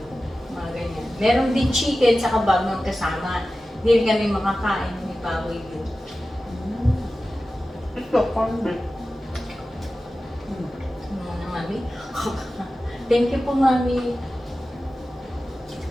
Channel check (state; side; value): normal; both; correlation 0.95